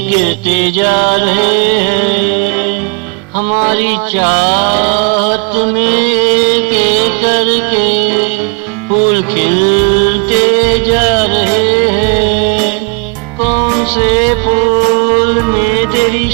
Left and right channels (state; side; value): quieter; left; 35.8 dB